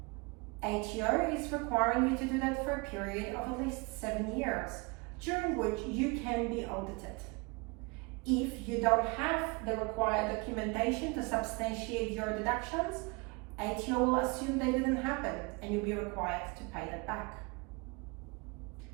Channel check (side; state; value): left; quieter; 28.5 dB